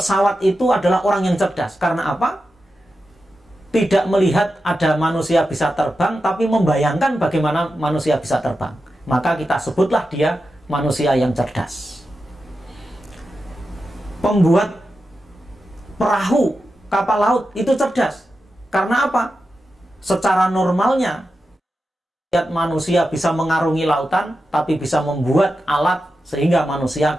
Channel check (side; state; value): both; normal; correlation 0.90